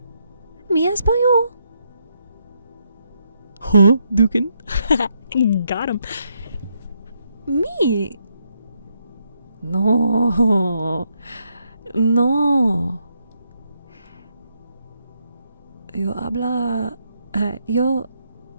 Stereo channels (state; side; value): inverted; both; correlation -0.77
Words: español. Huh, Dukin? Got him. Me. No. Yo